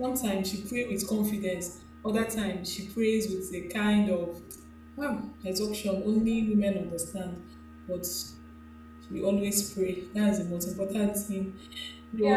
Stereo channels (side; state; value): both; identical; correlation 1.00